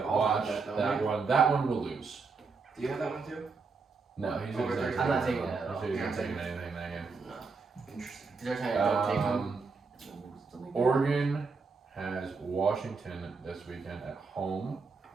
I'll watch have that, that one. That one will lose. Do you have that one too? No, he's Over not. 35. I'm not taking that at all. He's not Yeah. taking anything that game. No. Interesting. They're trying to don't take them. Oregon has Washington this weekend at home.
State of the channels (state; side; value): quieter; left; 4.6 dB